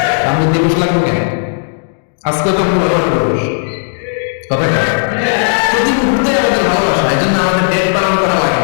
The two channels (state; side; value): silent; right; digital silence